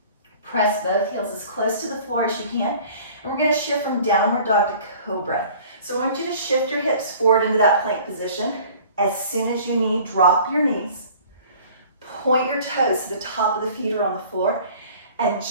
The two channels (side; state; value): both; inverted; correlation -0.48